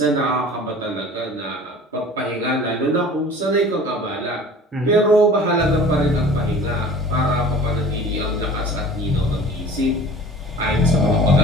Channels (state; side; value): normal; both; correlation 0.45